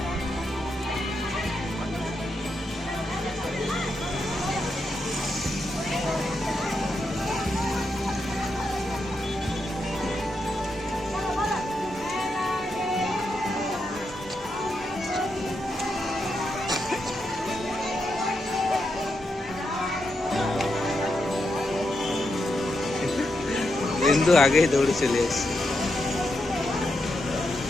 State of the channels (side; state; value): both; normal; correlation 0.84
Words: बिंदु आगे ही दौड़ चले।